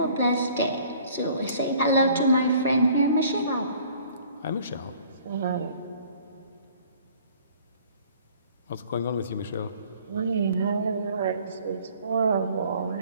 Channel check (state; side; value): inverted; both; correlation -0.54